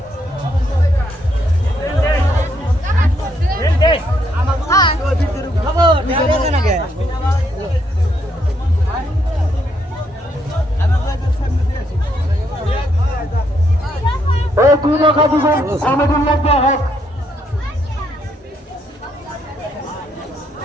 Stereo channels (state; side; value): normal; both; correlation 0.74